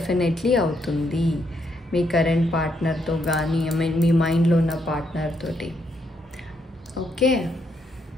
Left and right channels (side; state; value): both; normal; correlation 0.76